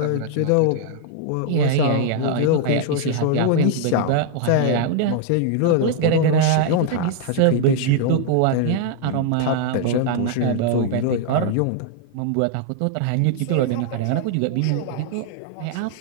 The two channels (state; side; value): different; both; correlation 0.00